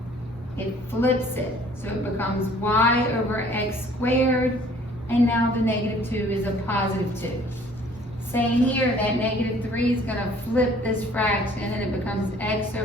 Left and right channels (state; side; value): normal; both; correlation 0.55